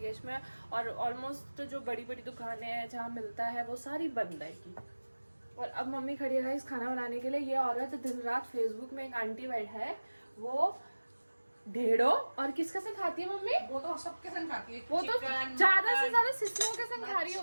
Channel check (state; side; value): inverted; both; correlation -1.00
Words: में, और ऑलमोस्ट जो बड़ी बड़ी दुकानें हैं जहाँ मिलता है वो सारी बंद है की। और अब मम्मी खड़ी है इस खाना बनाने के लिए। ये औरत दिन रात फेसबुक में एक आंटी बैठ है, वो ढेड़ो और किसके संग खाती है मम्मी? वो तो सबके संग खाती है, वो तो ज्यादा से ज्यादा सिस्नों के संग खा रही